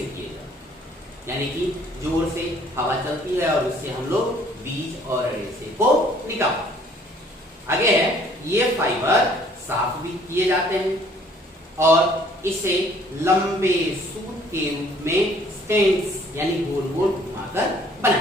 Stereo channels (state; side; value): normal; both; correlation 0.58